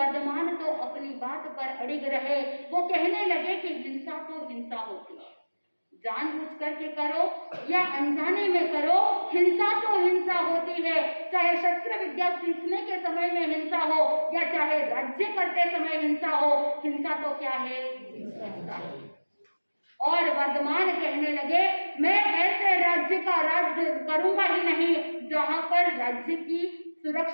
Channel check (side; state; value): both; inverted; correlation -1.00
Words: तो अपनी बात पर अड़िग रहे। वो कहने लगे कि हिंसा तो हिंसा होती है, जानबूझ करके करो या अनजाने में करो, हिंसा तो हिंसा होती है। चाहे शस्त्र विद्या सीखने के समय में हिंसा हो या चाहे राज्य करते समय हिंसा हो, हिंसा तो क्या है, हिंसा है। और वर्धमान कहने लगे, मैं ऐसे राज्य का राज्य करूंगा ही नहीं जहां पर राज्य की